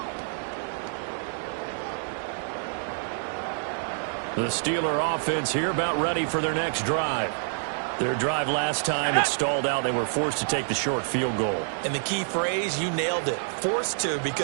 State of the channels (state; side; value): silent; left; digital silence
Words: The Steeler offense here about ready for their next drive. Their drive last time, it stalled out. They were forced to take the short field goal. And the key phrase, you nailed it. Forced to,